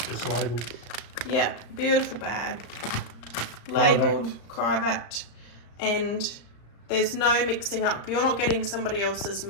just labelled. Yep, beautiful bag. Labelled, Crivat, and there's no mixing up. You're not getting somebody else's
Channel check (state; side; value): late; right; 35 ms